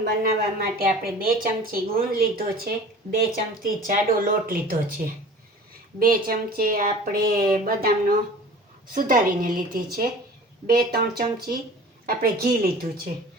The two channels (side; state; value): both; normal; correlation 0.42